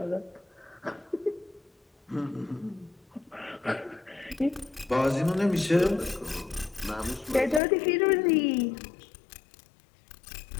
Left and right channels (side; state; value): right; drops out; at 7.6 s